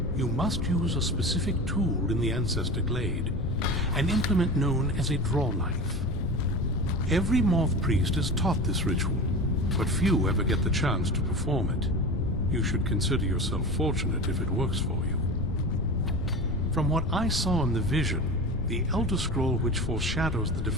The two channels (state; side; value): noise; left; rumble, 4 dB below the sound